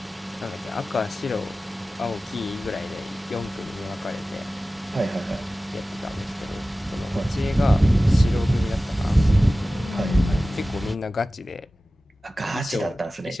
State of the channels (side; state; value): both; normal; correlation 0.96